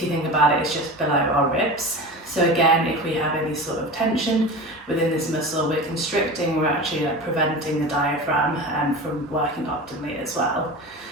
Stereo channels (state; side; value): normal; both; correlation 0.30